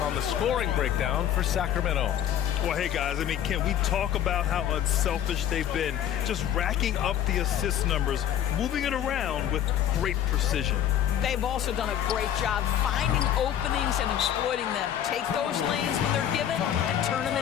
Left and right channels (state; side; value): quieter; right; 10.5 dB